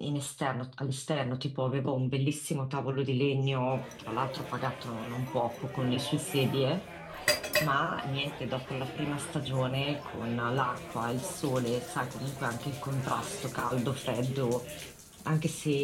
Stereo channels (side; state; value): both; identical; correlation 1.00